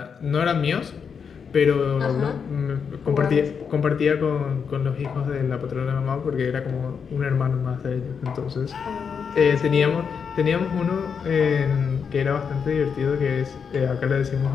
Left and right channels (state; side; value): quieter; right; 6.4 dB